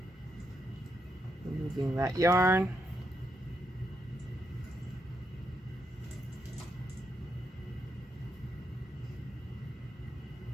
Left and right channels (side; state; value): both; normal; correlation 0.81